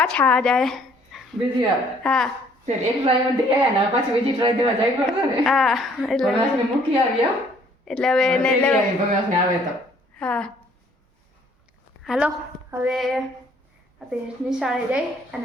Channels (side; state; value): both; normal; correlation 0.61